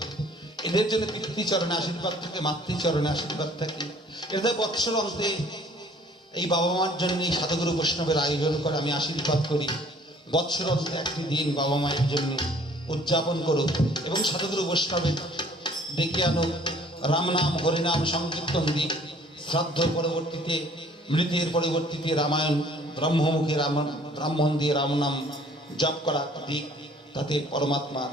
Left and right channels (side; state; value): both; normal; correlation 0.55